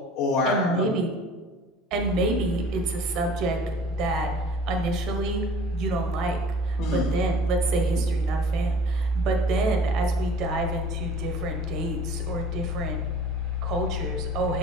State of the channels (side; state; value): both; normal; correlation 0.47